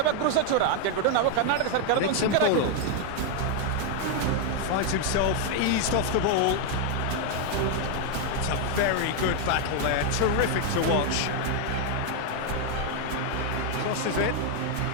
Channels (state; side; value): different; both; correlation 0.00